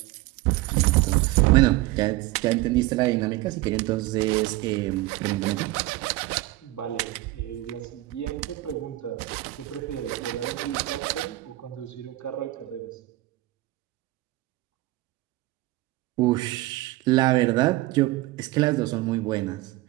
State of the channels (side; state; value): left; quieter; 18.5 dB